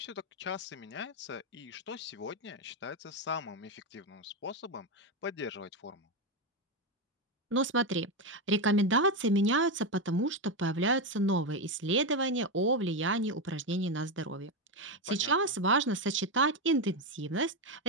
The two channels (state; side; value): normal; both; correlation 0.09